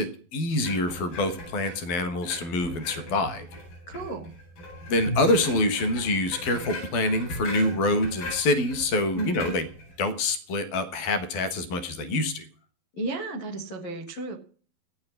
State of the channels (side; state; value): right; late; 11 ms